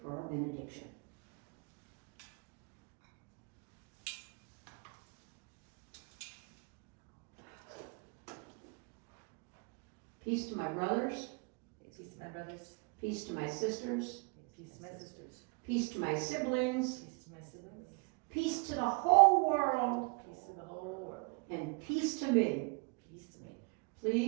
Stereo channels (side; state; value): left; quieter; 32.5 dB